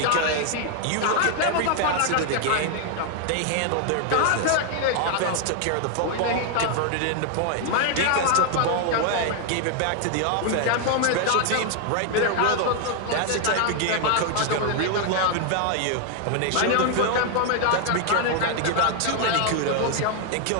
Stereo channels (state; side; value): different; both; correlation 0.00